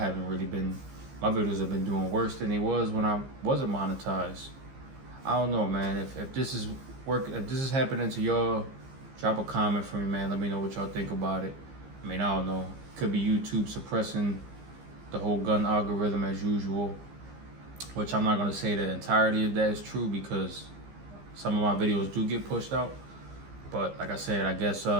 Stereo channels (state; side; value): late; left; 15 ms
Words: really been, my videos have been doing worse than they was when I wasn't monetized. I don't know, man. If this is if this is happening to y'all, drop a comment for me, man. Let me know what y'all think about it. I mean, I don't know. Could be YouTube suppressing the whole gun algorithm as usual, which I'm not gonna say the entirety of that is true, because some of my videos do get pushed out. But like I said, I guess